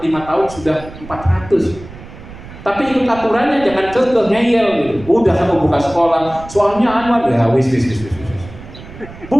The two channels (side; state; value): right; noise; rumble, 16 dB below the sound